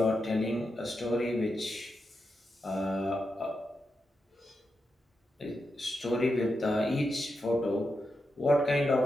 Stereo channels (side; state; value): both; normal; correlation 0.87